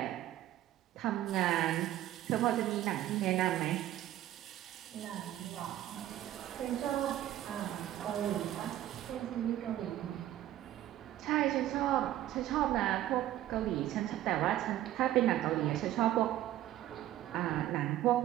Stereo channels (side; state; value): left; quieter; 13.4 dB